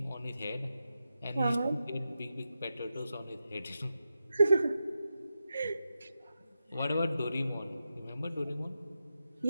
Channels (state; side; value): inverted; both; correlation -0.89